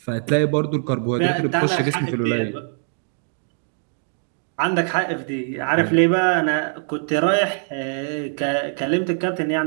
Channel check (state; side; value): silent; left; 60 dB below the other